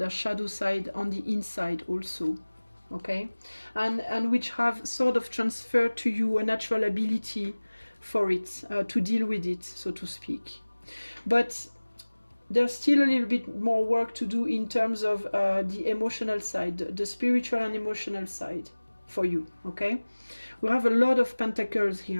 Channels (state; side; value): inverted; both; correlation -1.00